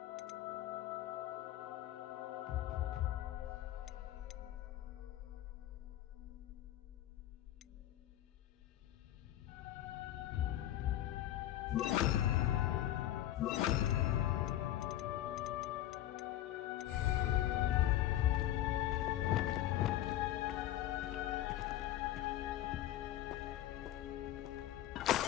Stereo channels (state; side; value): quieter; right; 13.3 dB